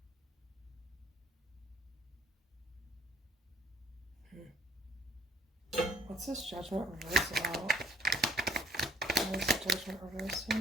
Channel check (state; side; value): normal; both; correlation 0.65